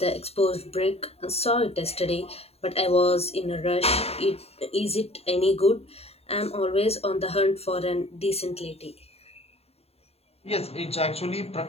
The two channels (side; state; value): right; late; 0.29 ms